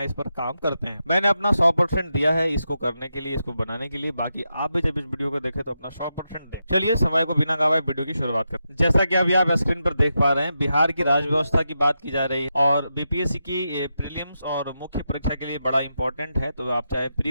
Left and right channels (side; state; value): both; inverted; correlation -0.86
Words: पर काम करते हैं। मैंने अपना 100% दिया है इसको करने के लिए, इसको बनाने के लिए। बाकी आप भी जब इस वीडियो को देखें तो अपना 100% दो। चलिए समय को बिना गवाए वीडियो की शुरुआत करते हैं। जैसा कि अभी आप स्क्रीन पर देख पा रहे हैं, बिहार की राज्य व्यवस्था की बात की जा रही है और बीपीएससी की प्रीलिम्स और मुख्य परीक्षा के लिए बड़ा इंपॉर्टेंट है। तो आप चाहे